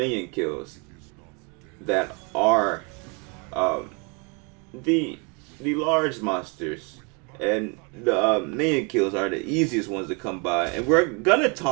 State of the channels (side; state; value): left; quieter; 33.1 dB